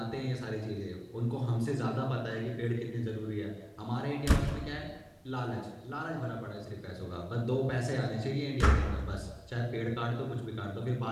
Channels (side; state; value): both; identical; correlation 1.00